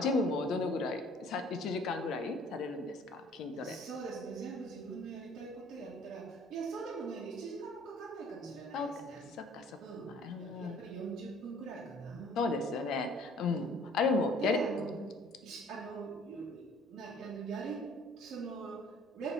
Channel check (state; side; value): normal; both; correlation 0.54